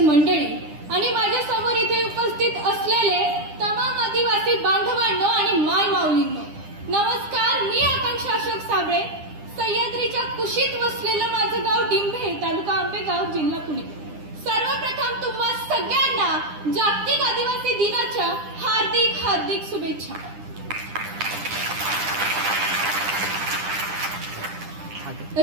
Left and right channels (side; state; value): left; late; 9.9 ms